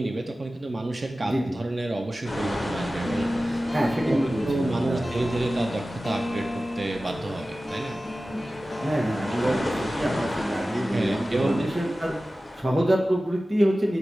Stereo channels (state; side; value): normal; both; correlation 0.96